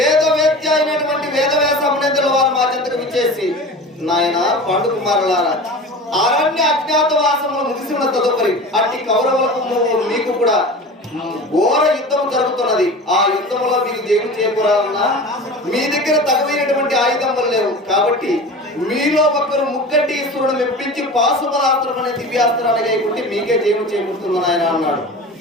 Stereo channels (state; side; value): normal; both; correlation 0.34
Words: అయినటువంటి వేదవ్యాస మునీంద్రుల వారు మా చెంతకు విచ్చేసి, నాయన పండు కుమారులారా, అరణ్య అజ్ఞాతవాసములు ముగిసి ఉన్న తదుపరి అట్టి కౌరవులకు మీకు కూడా ఘోర యుద్ధం జరుగుతున్నది. ఆ యుద్ధంలో మీకు జయము చేకూరాలన్నా మీ దగ్గర తగవైనటువంటి ఆయుధములు లేవు. కాబట్టి మీలో ఒకరు ముక్కటి ఈశ్వరుడు మెప్పించి పాశుపరాస్త్రం అనే దివ్యాస్త్రాన్ని గైకుంటే మీకే జయము చేకూరుతుంది ఆయన అన్నాడు.